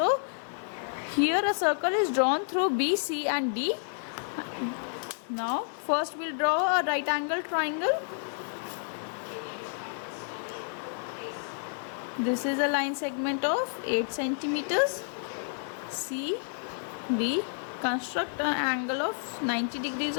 here a circle is drawn through BC and D. Now first we'll draw a right angle triangle. This is a line segment of 8 centimeters. C, D. Construct an angle of 90 degrees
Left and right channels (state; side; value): silent; right; digital silence